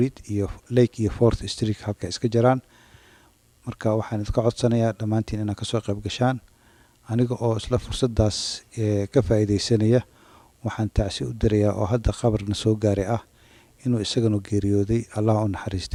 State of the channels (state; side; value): identical; both; correlation 1.00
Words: iyo 4th Street halka iska jiraan. marka waxaan idinka codsanayaa dhammaantiin inaad ka soo qayb gashaan aniga oo isla fursadaas ka faa'iideysanaya. waxaan tacsi u dirayaa oo hadda khabarna soo gaaray inuu isagana geeriyooday Allah u